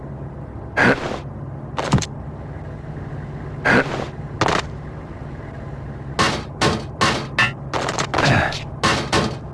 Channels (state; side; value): identical; both; correlation 1.00